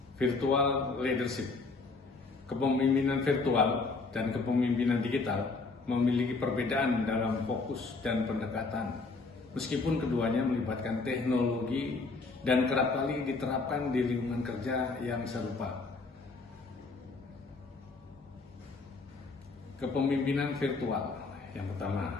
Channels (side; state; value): right; quieter; 3.9 dB